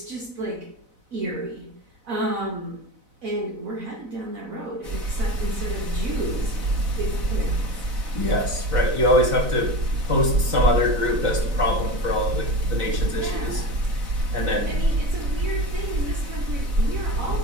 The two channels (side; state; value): left; late; 4.0 ms